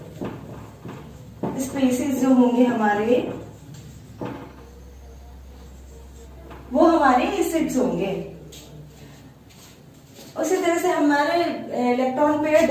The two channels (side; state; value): both; identical; correlation 1.00